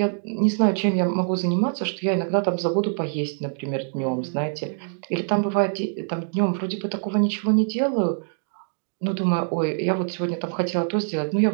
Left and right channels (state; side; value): silent; left; digital silence